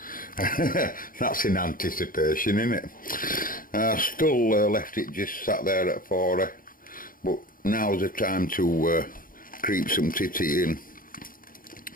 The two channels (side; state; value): right; late; 0.41 ms